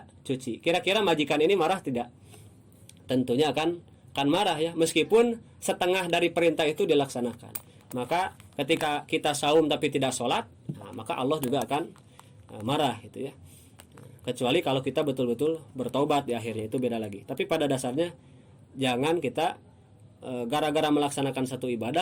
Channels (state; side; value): identical; both; correlation 1.00